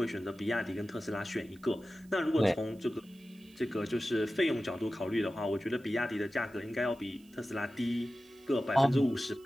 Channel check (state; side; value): noise; right; hiss, 29 dB below the sound